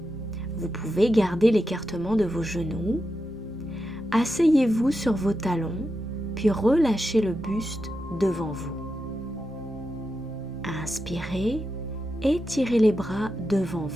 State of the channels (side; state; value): both; normal; correlation 0.88